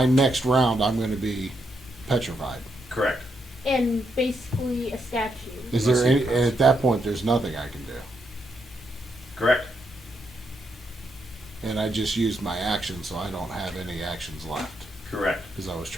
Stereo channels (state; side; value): normal; both; correlation 0.79